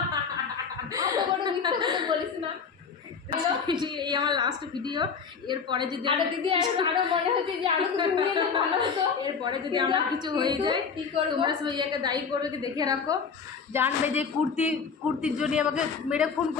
বলিস না। এই আমার লাস্ট ভিডিও, এরপরে যদি দিদি আরো মনে হচ্ছে যে আরো কিছু নিয়ে এলে ভালো হতো। এরপরে যদি আমার কিছু হয়ে যায় কি করবো? তোমরা সবাই একে দায়ী করবে, কি দেখে রাখো, জানবে যে কুর্তির জন্য আমাকে মেরে খুন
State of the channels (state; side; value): quieter; right; 5.8 dB